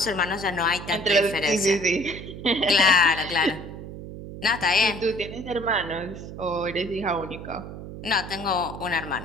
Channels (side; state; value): right; noise; hum, 11 dB below the sound